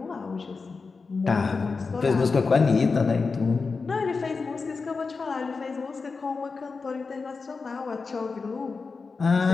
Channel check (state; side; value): quieter; right; 4.5 dB